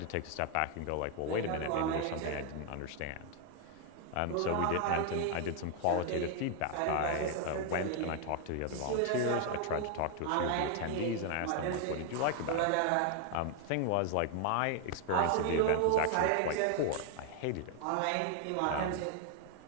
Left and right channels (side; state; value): both; different; correlation 0.00